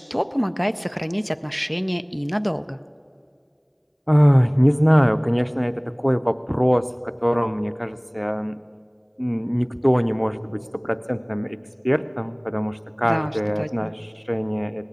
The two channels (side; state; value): both; identical; correlation 1.00